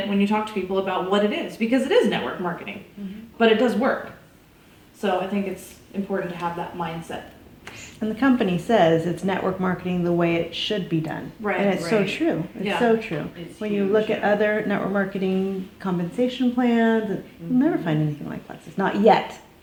when you talk to people about what it is, because it is network marketing, but it does work. So I think it's important to have that mindset. And the company says it's network marketing the way it should be done. Right. And it's so Right. true. It's Yeah. so true. When you look at other network marketing compensation plans, you'll never find anything like Plexus. Not yet.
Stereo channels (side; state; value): both; identical; correlation 1.00